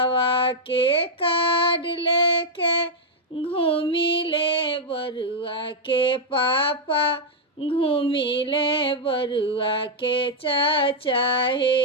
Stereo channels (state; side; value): normal; both; correlation -0.03